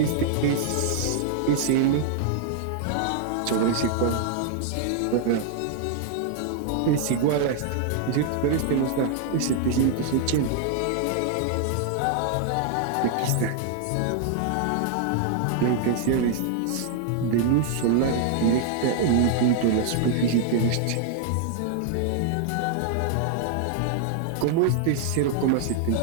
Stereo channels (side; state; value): both; different; correlation 0.00